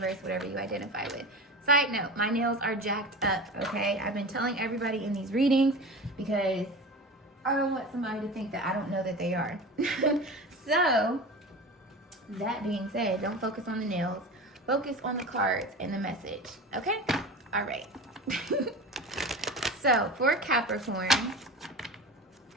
whatever you identify with. Side note, my nails are jacked up, okay? I've been telling everybody in these readings because I don't want somebody to think that I don't know that they are. So, that being said, don't focus on the nails. Focus on the cards and the message, okay? All right. So, for Capricorn,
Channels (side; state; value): both; normal; correlation 0.31